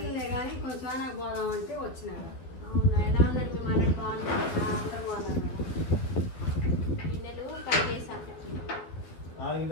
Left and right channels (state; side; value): late; right; 12 ms